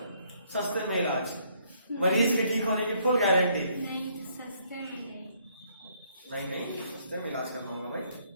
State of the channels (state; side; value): inverted; both; correlation -0.68